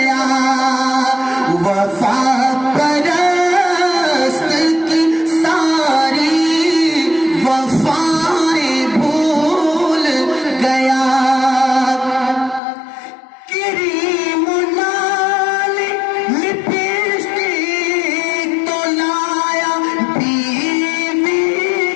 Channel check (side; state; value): right; drops out; at 12.6 s